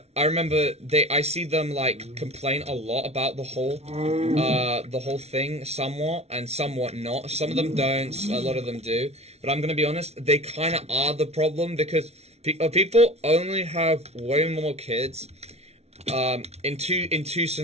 I remember I see them like complain a lot about the whole thing, somewhat and somewhat not. Some of them don't, a lot of them do. But I'm gonna be honest, they kind of are the problem, because people only have way more kids. In two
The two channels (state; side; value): late; left; 0.31 ms